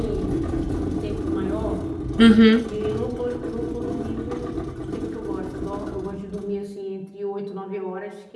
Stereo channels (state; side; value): identical; both; correlation 1.00